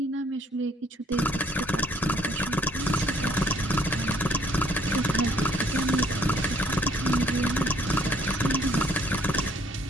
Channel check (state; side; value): normal; both; correlation 0.63